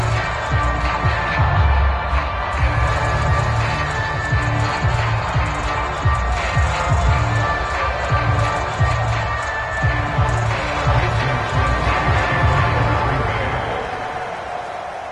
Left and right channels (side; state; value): both; identical; correlation 1.00